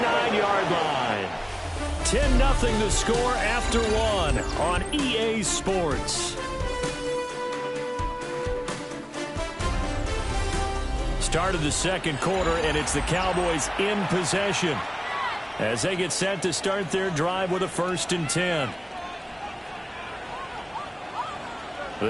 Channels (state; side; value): identical; both; correlation 1.00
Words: line. 10-0 the score after one on EA Sports. Start of the second quarter, and it's the Cowboys in possession as they get set to start their drive with a 1st and 10.